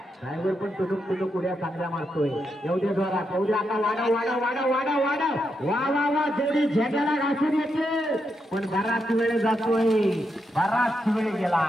ड्रायव्हर पण तुटूक उड्या चांगल्या मारतोय. एवढे जोरात एवढ्या आता वाडा वा वा वा. जोडी झेंड्याला घासून येते पण बराच वेळ जातोय, बराच वेळ गेला.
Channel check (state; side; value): normal; both; correlation 0.83